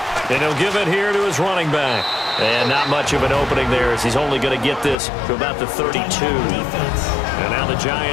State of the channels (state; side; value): drops out; right; at 5.0 s